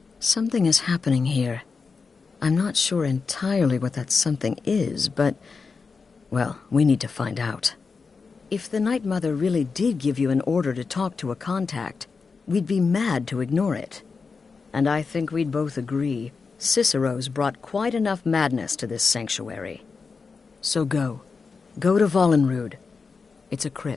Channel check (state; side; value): quieter; right; 4.9 dB